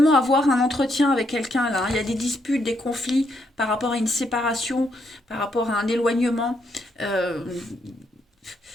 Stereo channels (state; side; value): normal; both; correlation 0.76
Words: avoir un entretien avec quelqu'un là. Il y a des disputes, des conflits par rapport à une séparation, par rapport à un éloignement.